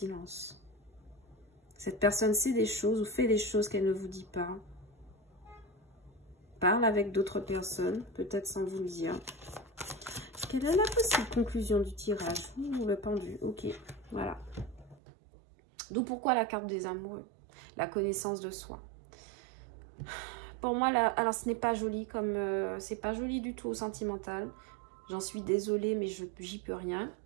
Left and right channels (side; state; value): left; drops out; at 15.0 s